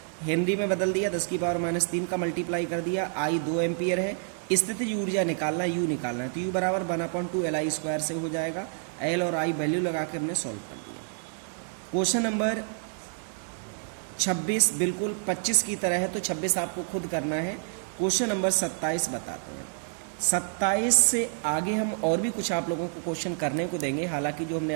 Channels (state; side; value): silent; left; digital silence